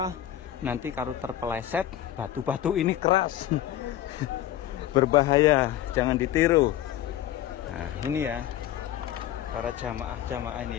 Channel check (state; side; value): quieter; right; 12.4 dB